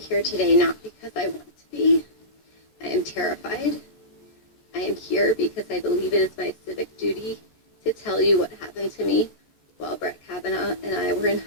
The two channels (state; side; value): late; right; 14 ms